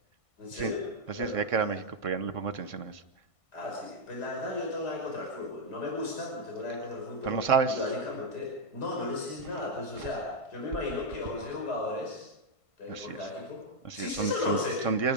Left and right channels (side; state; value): right; late; 1.5 ms